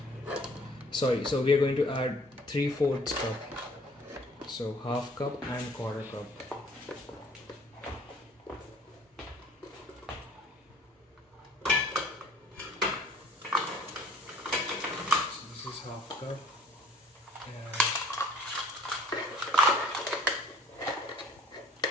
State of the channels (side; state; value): both; normal; correlation 0.55